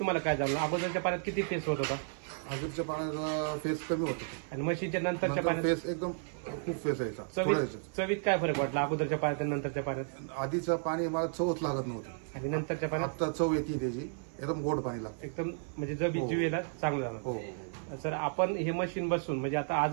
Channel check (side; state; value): left; silent; 56 dB below the other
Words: काय जाणवलं? अगोदरच्या पाण्यात किती फेस होत होता? अगोदरच्या पाण्याचा फेस कमी होतो आणि मशीनच्या नंतरच्या पाण्यात फेस एकदम खूप फेस यायचा. चवीत काय फरक वाटला अगोदरच्या पाण्यात आणि नंतरच्या पाण्यात? आधीचं पाणी मला चवच लागत नव्हती आणि नंतरच्या पाण्यात आता चव येते त्याची, एकदम गोड पाणी लागतं. एकदम म्हणजे जीवेला चांगलं झालं. हो. सर आपण हे मशीन बसून म्हणजे आता